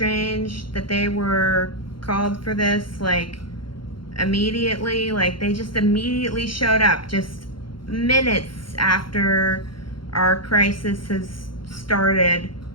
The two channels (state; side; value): late; right; 0.73 ms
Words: that they were called for this, like, immediately. Like, they just immediately showed up just minutes after our crisis has started.